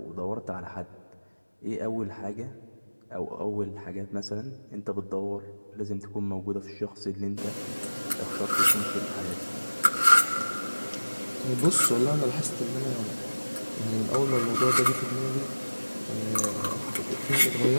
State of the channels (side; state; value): both; inverted; correlation -1.00